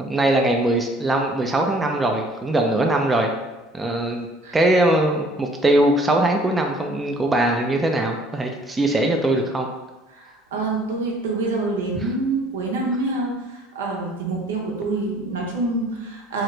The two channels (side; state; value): both; normal; correlation 0.57